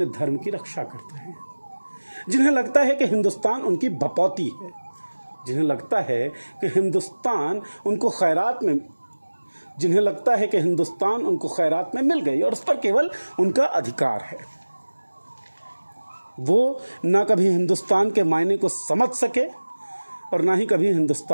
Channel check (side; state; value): both; inverted; correlation -1.00